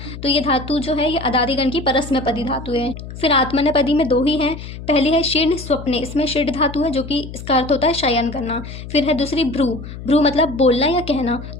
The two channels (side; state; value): left; noise; hum, 11 dB below the sound